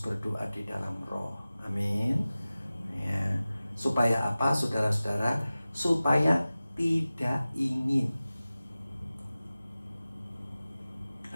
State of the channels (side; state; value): both; inverted; correlation -0.97